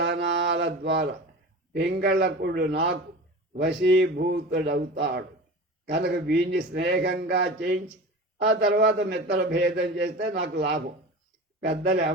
ద్వారా పింగళకుడు నాకు వశీభూతుడవుతాడు. కనుక వీడిని స్నేహంగా చేయించి ఆ తర్వాత మిత్ర భేదం చేస్తే నాకు లాభం. పెద్దలు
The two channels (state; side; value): normal; both; correlation 0.33